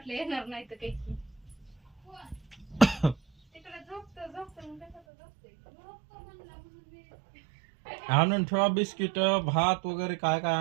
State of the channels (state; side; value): drops out; left; at 5.0 s